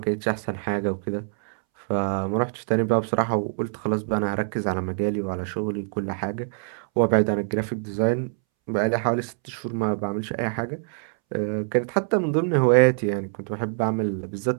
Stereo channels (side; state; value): left; silent; 62 dB below the other